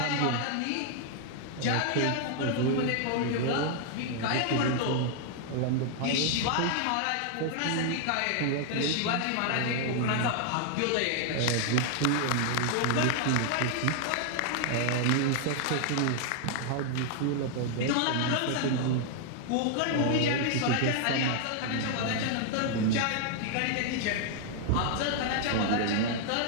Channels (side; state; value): both; different; correlation 0.00